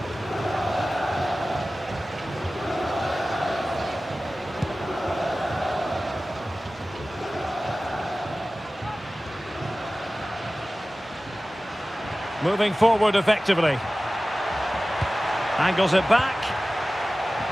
Moving forward effectively. Angles it back.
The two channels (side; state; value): both; normal; correlation 0.96